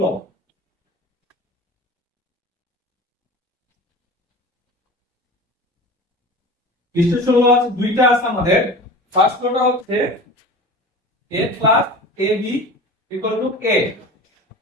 ল। ডিস্ট্রিবিউশন ল আছে দুইটা আছে আমাদের। ফার্স্ট লটা হচ্ছে a plus ab equal to a।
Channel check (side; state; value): both; normal; correlation 0.35